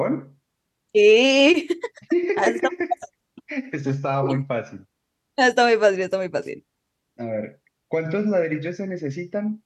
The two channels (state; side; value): identical; both; correlation 1.00